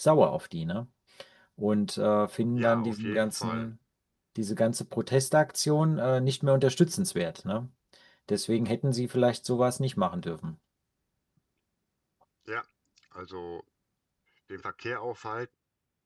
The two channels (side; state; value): both; identical; correlation 1.00